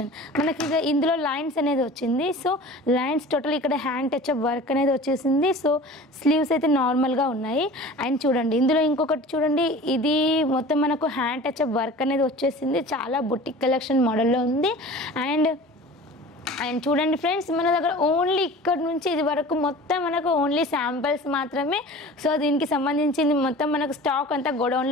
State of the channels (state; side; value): normal; both; correlation 0.40